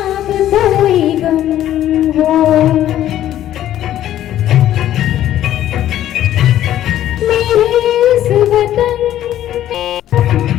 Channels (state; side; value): quieter; right; 12.3 dB